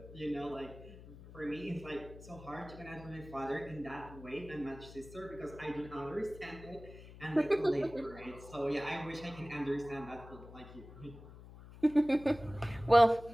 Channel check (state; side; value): noise; left; hum, 17 dB below the sound